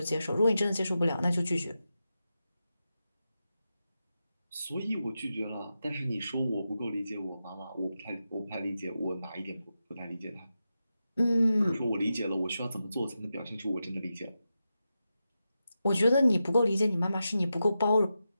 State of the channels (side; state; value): both; inverted; correlation -0.90